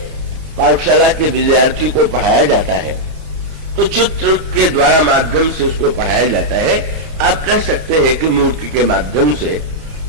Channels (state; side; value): late; left; 32 ms